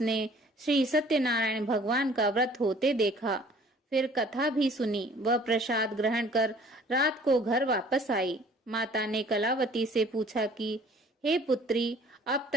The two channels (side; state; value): both; normal; correlation 0.53